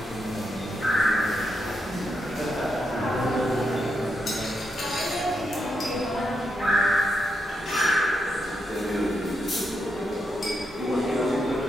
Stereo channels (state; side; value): normal; both; correlation 0.82